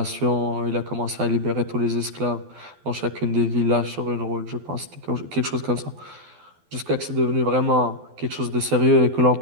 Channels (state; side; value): late; left; 12 ms